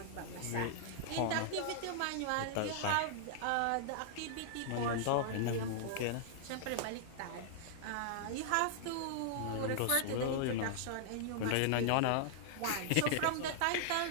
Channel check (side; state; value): both; different; correlation -0.01